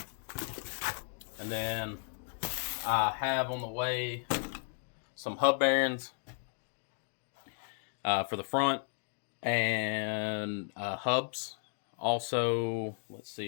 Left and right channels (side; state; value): right; silent; 55 dB below the other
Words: And then I have on the way some hub bearings for the front and hubs. Also, let's